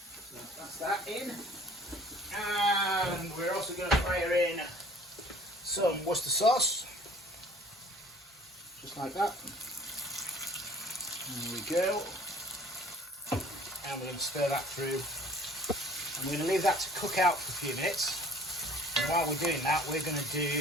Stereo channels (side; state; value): both; normal; correlation 0.51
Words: that's that in. And we're also going to fire in some Worcester sauce. Just like that. There we go. And we're going to stir that through. And we're going to leave that to cook out for a few minutes. And while we're doing that, we're going to